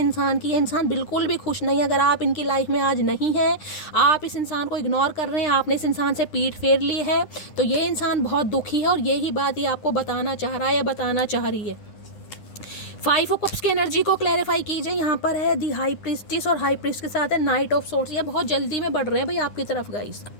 की। ये इंसान बिल्कुल भी खुश नहीं है। अगर आप इनकी लाइफ में आज नहीं हैं, आप इस इंसान को इग्नोर कर रहे हैं, आपने इस इंसान से पीठ फेर ली है, तो ये इंसान बहुत दुखी है और यही बात ये आपको बताना चाह रहा है या बताना चाह रही है। 5 ऑफ कप्स की एनर्जी को क्लैरिफाई कीजिए। यहाँ पर है दी हाई प्रीस्टिस और हाई प्रीस्ट के साथ है नाइट ऑफ सोर्ट्स। ये बहुत जल्दी में बढ़ रहे हैं भाई आपकी तरफ गाइस।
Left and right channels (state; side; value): late; right; 9.8 ms